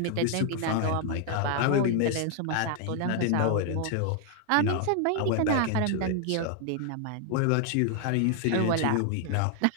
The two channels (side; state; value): both; different; correlation 0.00